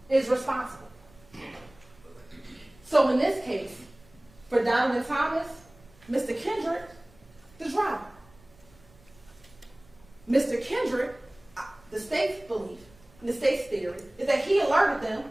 is responsible. So in this case, for Donovan Thomas, Mr. Kendrick, the driver. Mr. Kendrick, the state's belief, the state's theory, is that he alerted them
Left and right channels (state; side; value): noise; right; rumble, 27 dB below the sound